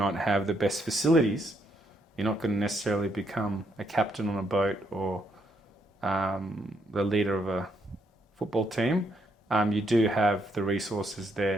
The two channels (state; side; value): normal; both; correlation 0.75